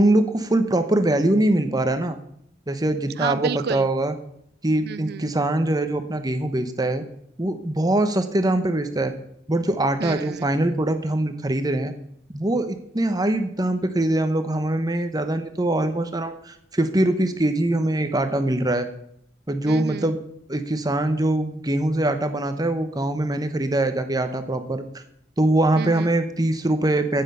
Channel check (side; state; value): both; normal; correlation 0.76